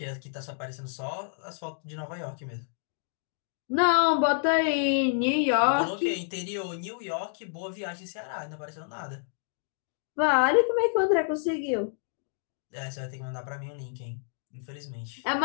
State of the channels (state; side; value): silent; right; digital silence